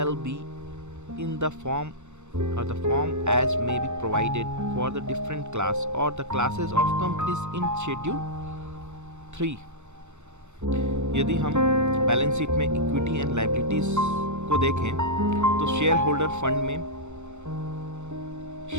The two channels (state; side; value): late; left; 0.83 ms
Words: be in the form as may be provided for the different class or the classes of companies in schedule 3. यदि हम balance sheet में equity and liabilities को देखें तो share holder fund में